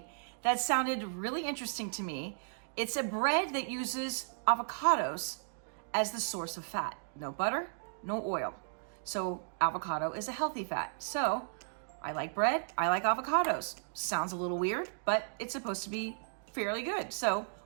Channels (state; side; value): silent; left; digital silence